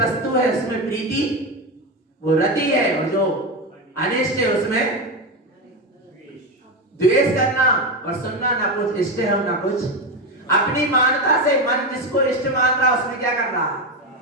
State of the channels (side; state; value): both; normal; correlation 0.14